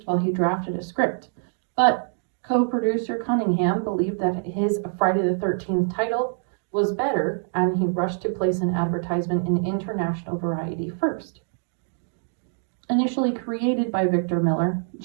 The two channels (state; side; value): silent; left; 62 dB below the other